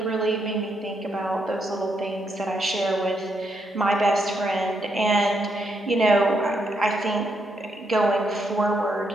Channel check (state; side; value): normal; both; correlation 0.78